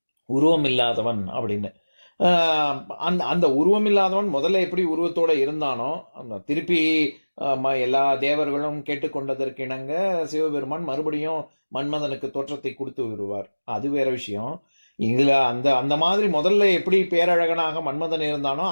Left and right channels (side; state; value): both; inverted; correlation -1.00